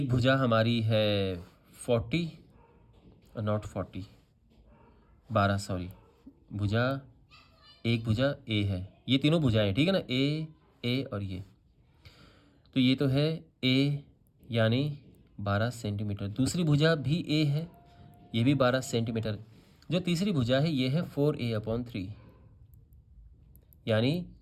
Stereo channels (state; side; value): identical; both; correlation 1.00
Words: भुजा हमारी है 40, नॉट 40, 12, सॉरी, भुजा, एक भुजा A है, ये तीनों भुजाएं, ठीक है ना, A और ये, तो ये तो है A यानी 12 सेंटीमीटर। दूसरी भुजा भी A है, ये भी 12 सेंटीमीटर। जो तीसरी भुजा है ये है 4A/3, यानी